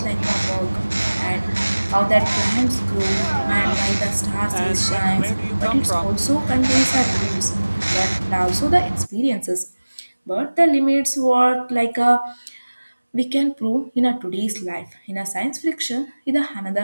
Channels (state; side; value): inverted; both; correlation -1.00